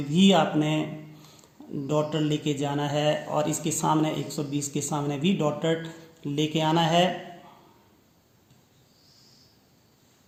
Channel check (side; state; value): both; identical; correlation 1.00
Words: भी आपने डॉटर लेके जाना है और इसके सामने 120 के सामने भी डॉटर लेके आना है।